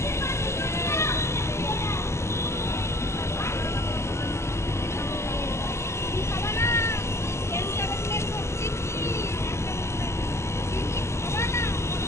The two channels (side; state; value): right; late; 0.13 ms